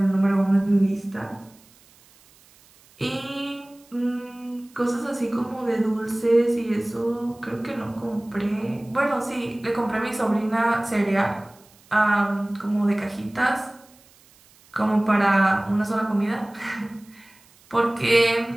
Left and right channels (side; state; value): right; noise; hiss, 28 dB below the sound